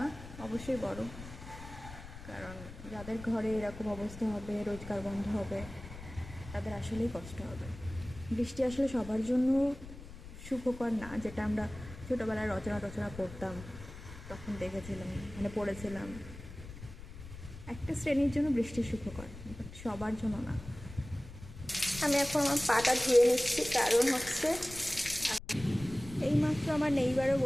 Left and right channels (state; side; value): noise; left; rumble, 14 dB below the sound